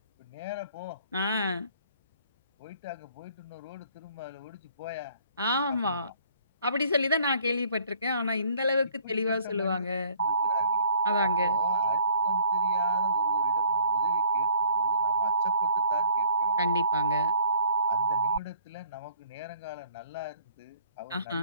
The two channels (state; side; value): inverted; both; correlation -0.57